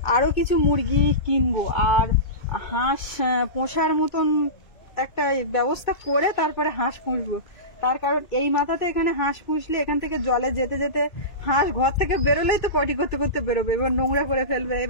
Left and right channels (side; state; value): right; late; 2.3 ms